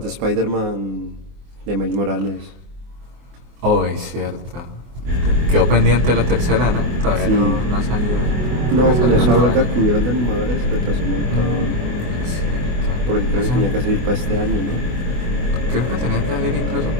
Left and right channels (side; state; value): left; late; 24 ms